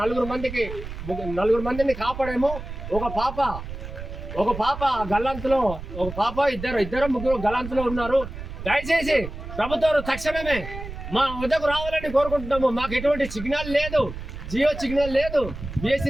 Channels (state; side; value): noise; right; rumble, 10 dB below the sound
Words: 4 మందిని కాపాడేమో. ఒక పాప గల్లంతులో, ఒక పాప ఇద్దరు ముగ్గురు గల్లంతులో ఉన్నారు. దయచేసి ప్రభుత్వం తక్షణమే మా వద్దకు రావాలని కోరుకుంటున్నాము. మాకు ఎటువంటి సిగ్నల్ లేదు, జియో సిగ్నల్ లేదు,